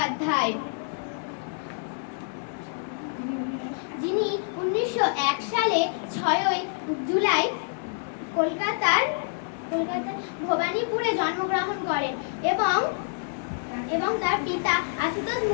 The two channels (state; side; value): silent; right; digital silence